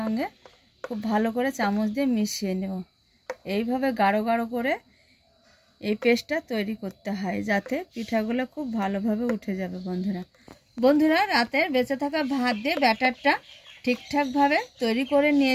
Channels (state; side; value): identical; both; correlation 1.00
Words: খুব ভালো করে চামচ দিয়ে মিশিয়ে নেব। এইভাবে গাঢ় গাঢ় করে এই পেস্টটা তৈরি করতে হয় যাতে পিঠাগুলো খুব ভালোভাবে উঠে যাবে। বন্ধুরা রাতের বেঁচে থাকা ভাত দিয়ে ব্যাটারটা ঠিকঠাকভাবে তৈরি করে